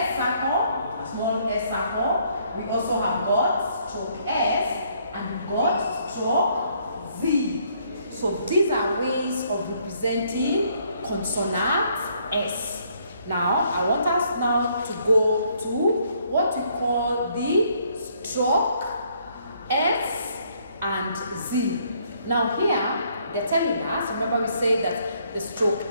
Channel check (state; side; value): inverted; both; correlation -0.67